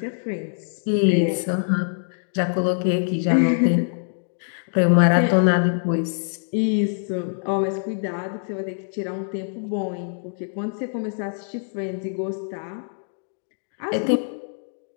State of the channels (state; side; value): silent; right; digital silence